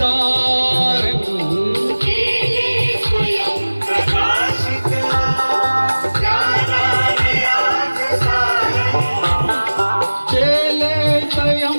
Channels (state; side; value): inverted; both; correlation -1.00